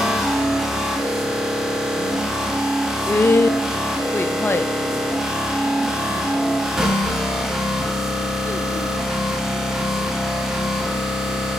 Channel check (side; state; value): both; normal; correlation 0.83